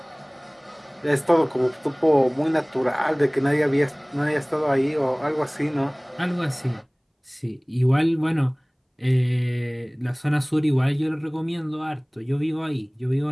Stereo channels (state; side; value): identical; both; correlation 1.00